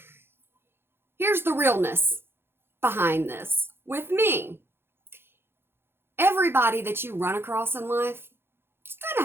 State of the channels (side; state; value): left; late; 0.11 ms